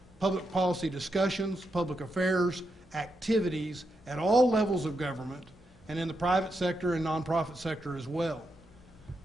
public policy discussions, public affairs, activities at all levels of government and in the private sector and nonprofit sector as well.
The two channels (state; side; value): normal; both; correlation 0.84